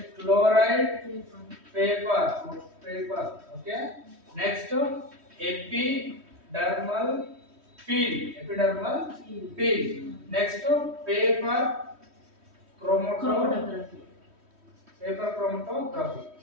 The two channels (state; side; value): late; left; 3.1 ms